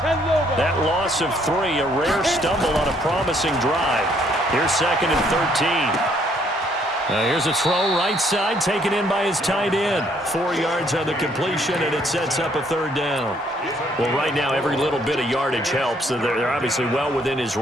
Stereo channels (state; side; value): normal; both; correlation 0.67